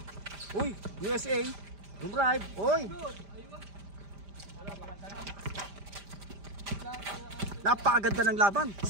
Uy, USA. Dumrive. Uy. Napakaganda ng laban.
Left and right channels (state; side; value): late; left; 5.0 ms